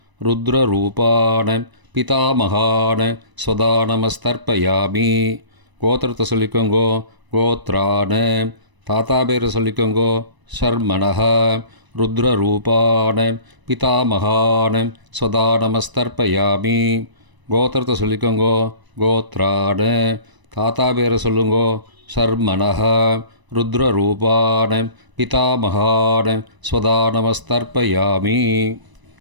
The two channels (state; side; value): late; left; 1.0 ms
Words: ருத்ரரூபான பிதாமகான ஸ்வதானமஸ்தர்ப்பயாமி. கோத்திரத்தை சொல்லிக்கோங்கோ. கோத்ரான. தாத்தா பேரை சொல்லிக்கோங்கோ. ஷர்மணஹ ருத்ரரூபான பிதாமகான ஸ்வதானமஸ்தர்ப்பயாமி. கோத்திரத்தை சொல்லிக்கோங்கோ கோத்ரான. தாத்தா பேரை சொல்லுங்கோ சர்மனஹ. ருத்ரரூபான பிதாமகான ஸ்வதா நமஸ்தர்ப்பயாமி.